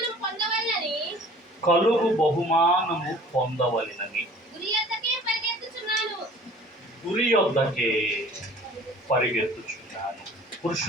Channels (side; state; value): both; normal; correlation 0.48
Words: కలుగు బహుమానము పొందవలెనని గురి యొద్దకే పరిగెత్తుచున్నాను.